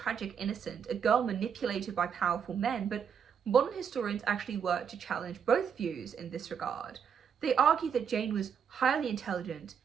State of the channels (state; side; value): quieter; left; 7.4 dB